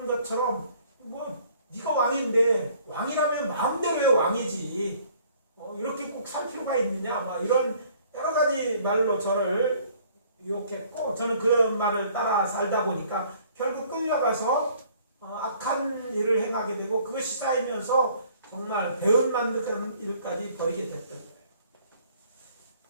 것처럼 뭐 네가 왕인데 왕이라면 마음대로 왜 왕이지? 이렇게 꼭 살 필요가 있느냐? 막 이런 여러 가지 말로 저를 유혹했고 저는 그런 말을 따라 살다 보니까 결국 끌려가서 악한 일을 행하게 되고 그것이 쌓이면서 정말 배은 만드는 일까지 벌이게 됐던 거예요.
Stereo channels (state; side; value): inverted; both; correlation -0.58